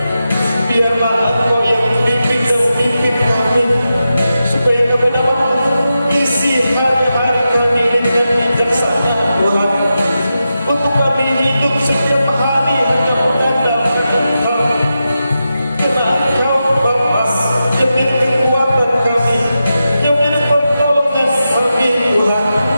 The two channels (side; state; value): both; inverted; correlation -0.89